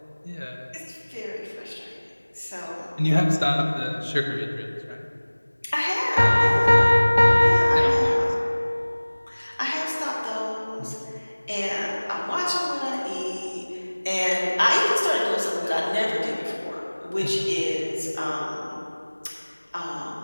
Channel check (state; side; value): inverted; both; correlation -1.00